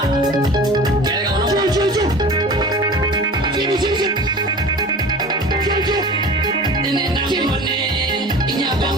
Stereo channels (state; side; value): normal; both; correlation 0.39